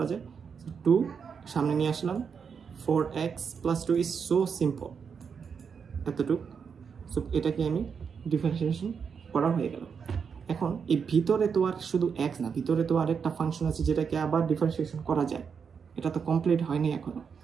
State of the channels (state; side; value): quieter; left; 6.4 dB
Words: যায়, 2 সামনে নিয়ে আসলাম, 4x plus 2 is so simple, এতটুকু। সো এটাকে আমি ডিফারেন্সিয়েশন করা হয়ে গেল। এখন এই ভিতরে তো আর শুধু x না, ভিতরে তো আরেকটা ফাংশন আছে যেটাকে আবার ডিফারেন্সিয়েশন করা যায়, এটা তো কমপ্লিট হয়নি এখনো।